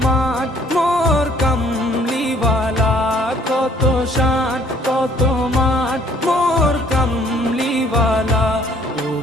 মান মোর কামলিওয়ালা, কত শান কত মান মোর কামলিওয়ালা। ও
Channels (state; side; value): normal; both; correlation 0.60